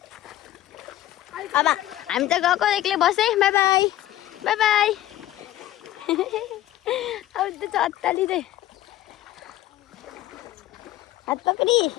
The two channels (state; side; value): quieter; right; 14.2 dB